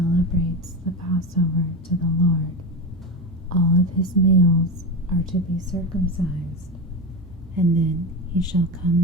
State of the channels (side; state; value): both; normal; correlation 0.20